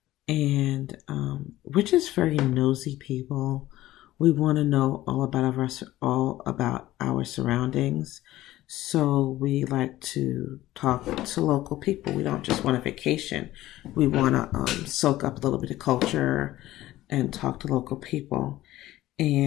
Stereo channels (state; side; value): quieter; right; 15.6 dB